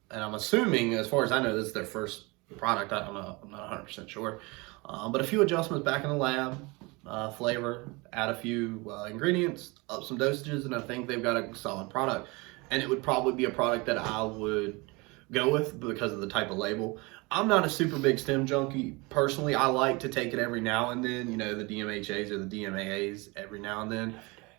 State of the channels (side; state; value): left; quieter; 25.9 dB